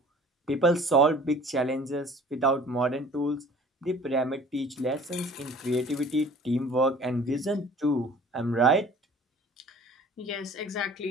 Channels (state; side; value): normal; both; correlation 0.48